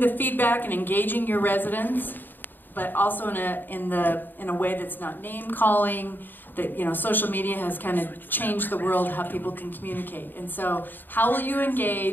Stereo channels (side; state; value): right; late; 0.092 ms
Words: feedback and engaging your residents, but also in a way that's not name calling. That social media has kind of changed the world how people can communicate. And so how will you